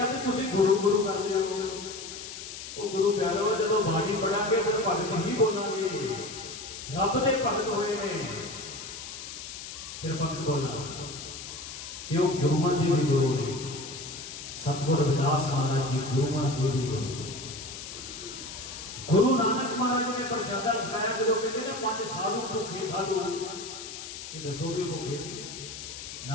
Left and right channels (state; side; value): noise; left; hiss, 10 dB below the sound